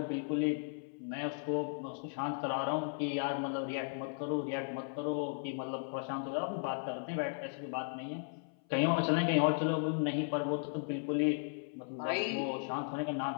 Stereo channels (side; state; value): right; silent; 54 dB below the other